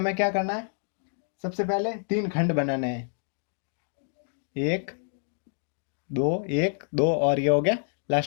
क्या करना है, सबसे पहले 3 खंड बनाने हैं, 1 2 1 2, और ये हो गया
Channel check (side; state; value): right; silent; digital silence